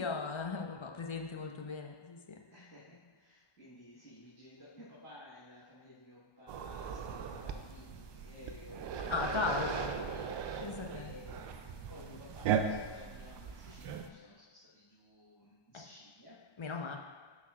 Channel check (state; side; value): late; right; 1.2 ms